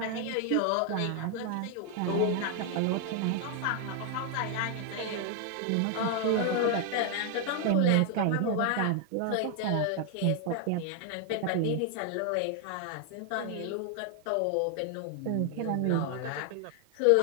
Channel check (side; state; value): both; different; correlation 0.00